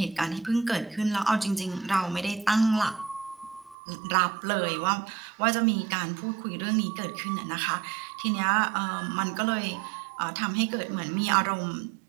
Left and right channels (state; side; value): drops out; left; at 3.8 s